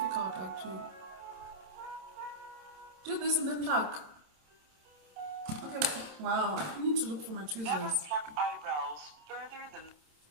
actually. Do this and then pluck. Okay, wow, I need to look for my tweezers. Never pluck eyebrows further than.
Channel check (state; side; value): late; left; 27 ms